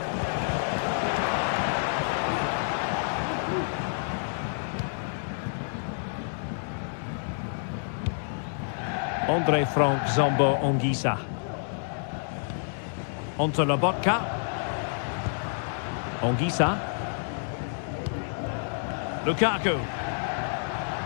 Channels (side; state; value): right; silent; digital silence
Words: André Frank Zambo Anguissa. Onto Lobotka. Anguissa. Lukaku.